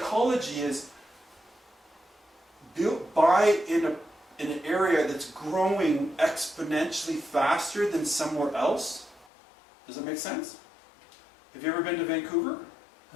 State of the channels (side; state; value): right; drops out; at 9.2 s